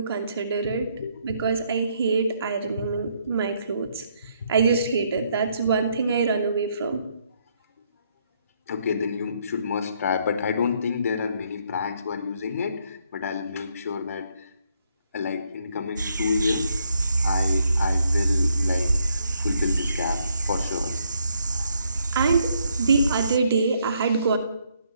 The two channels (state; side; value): inverted; both; correlation -0.72